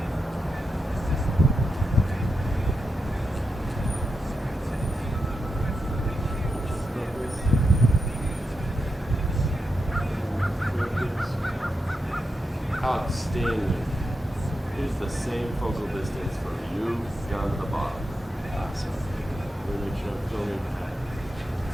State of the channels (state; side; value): normal; both; correlation 0.87